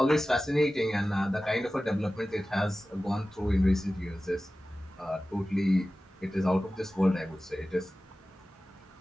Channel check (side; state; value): both; normal; correlation 0.96